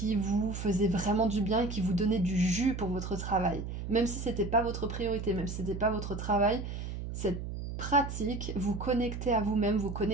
vous faisait vraiment du bien et qui vous donnait du jus pour votre travail. Même si c'était pas votre priorité, même si c'était pas votre travail, cette pratique vous connectait à vous-même, vous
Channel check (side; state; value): right; noise; hum, 6 dB below the sound